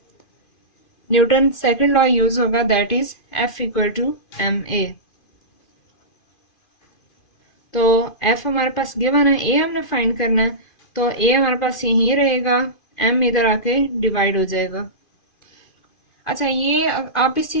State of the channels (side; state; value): right; late; 2.5 ms